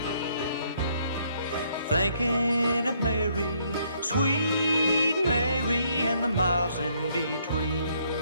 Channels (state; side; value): inverted; both; correlation -0.69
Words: thinking of Mary, sweet Mary, and the miles in between.